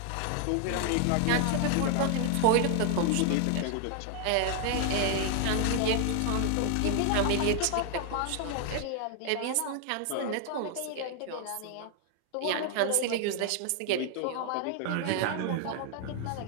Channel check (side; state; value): both; different; correlation 0.00